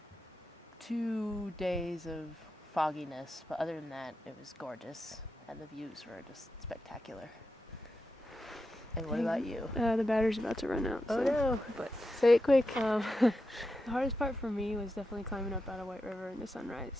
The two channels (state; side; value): normal; both; correlation 0.88